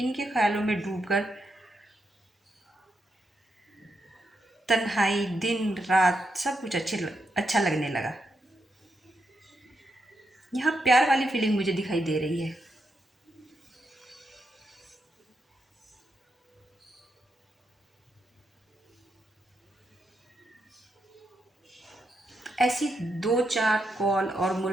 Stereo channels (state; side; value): normal; both; correlation 0.83